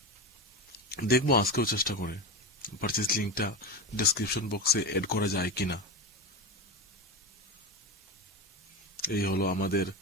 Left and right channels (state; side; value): normal; both; correlation 0.21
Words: দেখবো আজকেও চেষ্টা করে পারচেজ লিংকটা ডেসক্রিপশন বক্সে এড করা যায় কিনা। এই হলো আমাদের